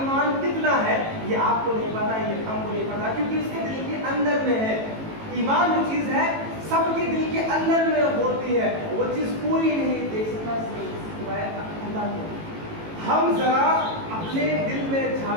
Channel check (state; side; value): late; left; 18 ms